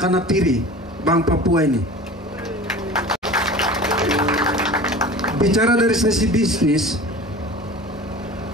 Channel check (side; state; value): both; normal; correlation 0.38